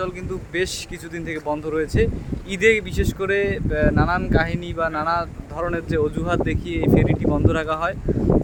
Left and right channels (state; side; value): identical; both; correlation 1.00